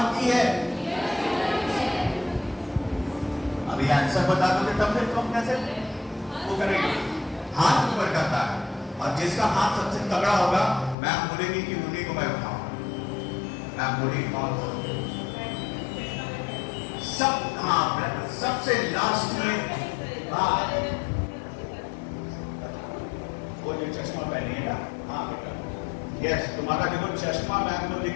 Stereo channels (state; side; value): drops out; right; at 11.0 s